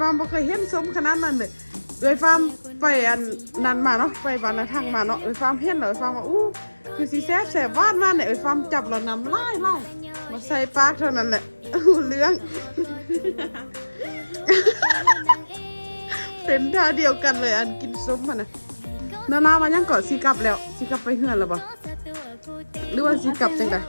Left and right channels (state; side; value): inverted; both; correlation -1.00